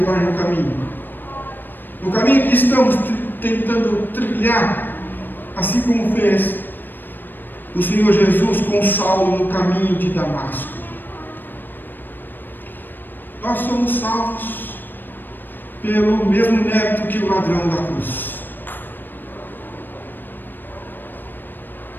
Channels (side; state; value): right; late; 0.093 ms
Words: no caminho. No caminho que estamos tentando trilhar, assim como fez o Senhor Jesus com Saulo no caminho de Damasco. Nós somos salvos pelo mesmo mérito que o ladrão da cruz.